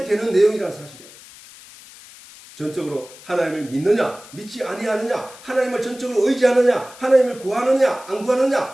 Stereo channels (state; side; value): noise; left; hiss, 20 dB below the sound